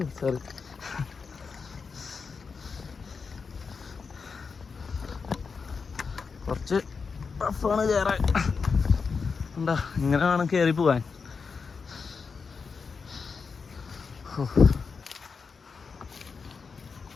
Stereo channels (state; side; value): quieter; right; 5.2 dB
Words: സോറി. കുറച്ച് ടഫാണ് കയറാൻ. എന്താ ഇങ്ങനെ വേണം കയറി പോവാൻ.